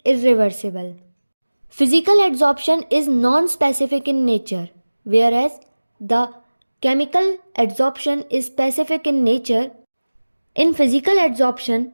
irreversible. Physical adsorption is non-specific in nature, whereas the chemical adsorption is specific in nature. In physical adsorption,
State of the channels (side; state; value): both; inverted; correlation -1.00